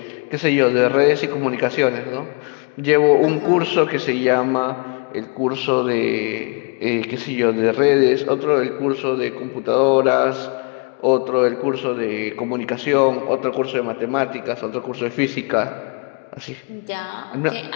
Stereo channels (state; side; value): quieter; right; 34.3 dB